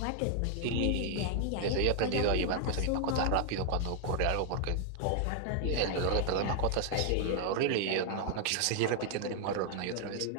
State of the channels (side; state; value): both; different; correlation 0.00